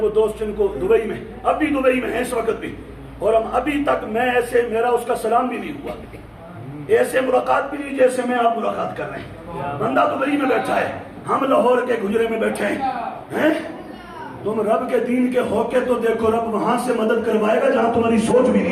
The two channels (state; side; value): identical; both; correlation 1.00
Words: وہ دوست جن کو دبئی میں اب بھی دبئی میں ہیں اس وقت بھی اور ہم ابھی تک میں ایسے میرا اس کا سلام بھی نہیں ہوا ایسے ملاقات بھی نہیں جیسے میں آپ ملاقات کر رہے ہیں. بندہ دبئی میں بیٹھا ہے ہم لاہور کے گجرے میں بیٹھے ہیں. تم رب کے دین کے ہو کے تو دیکھو رب وہاں سے مدد کروائے گا جہاں تمہاری سوچ بھی